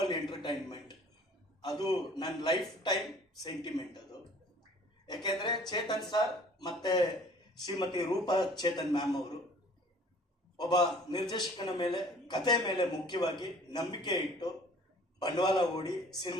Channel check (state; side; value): normal; both; correlation 0.51